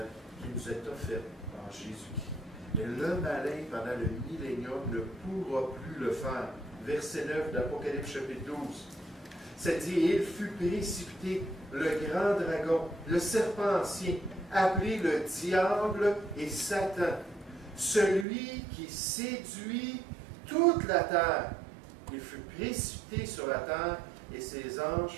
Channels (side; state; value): left; drops out; at 18.2 s